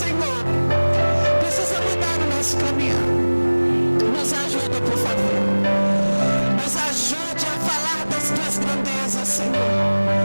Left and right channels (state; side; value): inverted; both; correlation -1.00